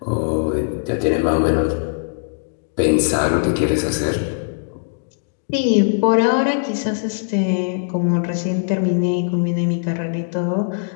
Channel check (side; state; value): right; silent; digital silence